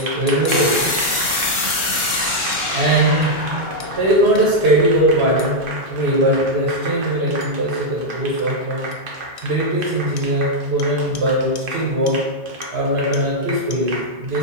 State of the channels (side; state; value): left; late; 1.4 ms